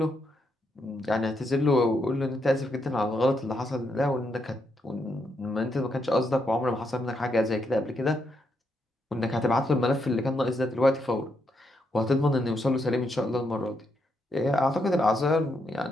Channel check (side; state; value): both; normal; correlation 0.79